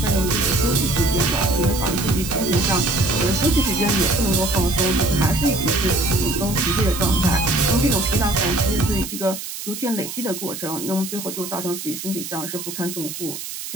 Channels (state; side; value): noise; right; hiss, 8 dB below the sound